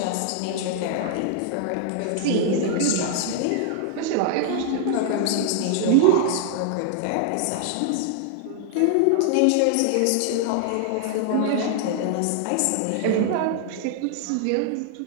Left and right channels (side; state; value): both; different; correlation 0.00